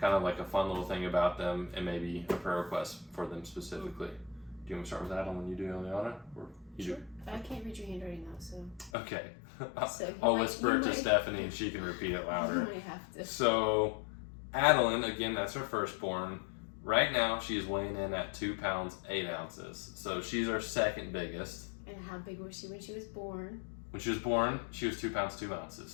of like a fun little thing about them, and maybe a prayer request for them specifically. Do you want to start with Adeline when you do, Elana? Or you Sure. do? I can't read your handwriting though, so. Okay. So I'll whisper it to Stephanie and she can repeat it louder. You might have to. So, Adeline, again, that's her firstborn. Right now, she's weighing in at 2 pounds, 8 ounces. So, she's our second biggest. And how big was she when she was born? When she was born, she was 2 pounds, 2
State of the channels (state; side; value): drops out; right; at 8.9 s